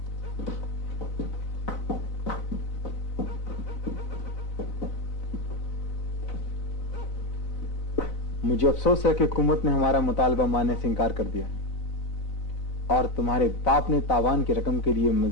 मुझे अफसोस है कि हुकूमत ने हमारा मुतालबा मानने से इनकार कर दिया है और तुम्हारे बाप ने तावान की रकम के लिए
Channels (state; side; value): late; right; 4.0 ms